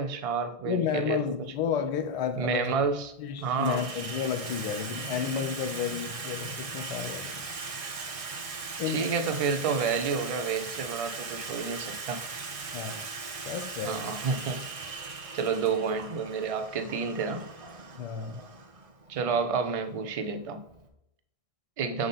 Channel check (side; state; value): left; late; 1.6 ms